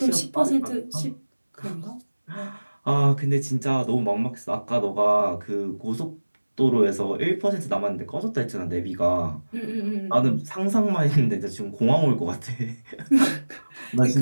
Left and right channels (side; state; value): both; inverted; correlation -1.00